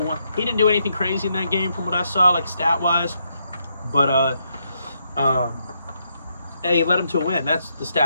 He didn't do anything crazy in that game from what I saw, like stat-wise. But, hey, he led him to a win. That's the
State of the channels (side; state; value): both; inverted; correlation -0.78